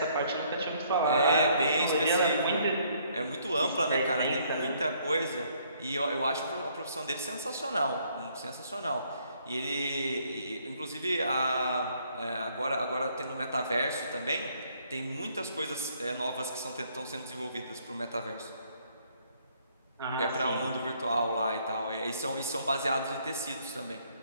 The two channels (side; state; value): both; inverted; correlation -0.66